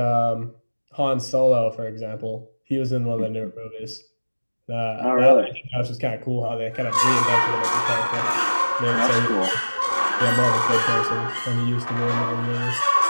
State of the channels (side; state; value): both; inverted; correlation -1.00